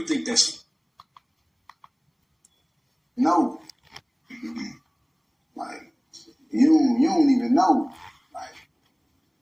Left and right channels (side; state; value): both; identical; correlation 1.00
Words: think that's? No. Like, you don't even know. Like,